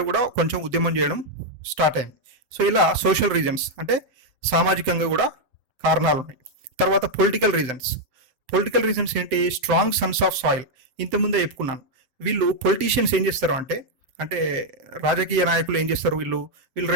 కూడా కొంచెం ఉద్యమం చేయడం స్టార్ట్ అయింది. సో ఇలా సోషల్ రీజన్స్ అంటే సామాజికంగా కూడా కారణాలు ఉన్నాయి. తర్వాత పొలిటికల్ రీజన్స్ ఏంటి, స్ట్రాంగ్ సన్స్ ఆఫ్ సాయిల్. ఇంతకుముందే చెప్పుకున్నాను, వీళ్ళు పొలిటీషియన్స్ ఏం చేస్తారు అంటే రాజకీయ నాయకులు ఏం చేస్తారు, వీళ్ళు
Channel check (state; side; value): late; left; 7.8 ms